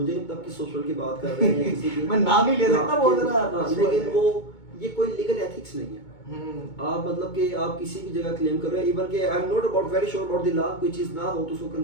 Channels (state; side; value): late; right; 2.2 ms